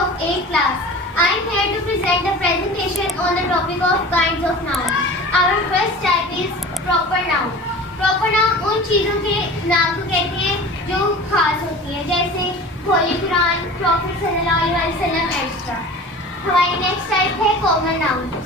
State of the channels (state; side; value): normal; both; correlation 0.38